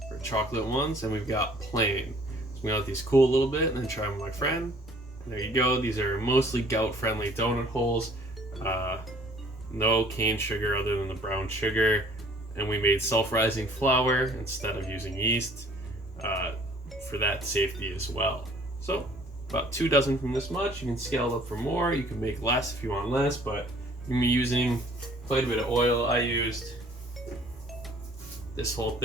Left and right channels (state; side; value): normal; both; correlation 0.56